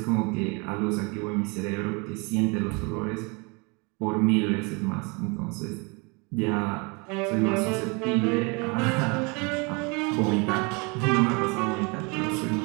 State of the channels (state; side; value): quieter; left; 30.2 dB